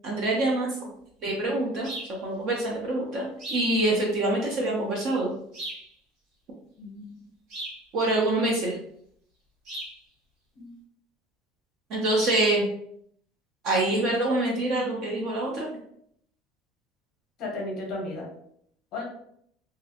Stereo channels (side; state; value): both; normal; correlation 0.43